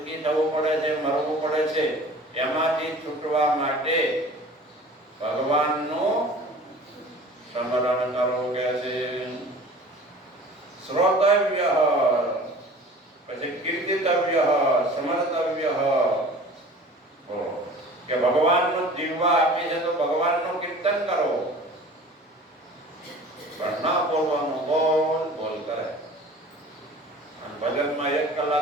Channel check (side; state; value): both; normal; correlation 0.43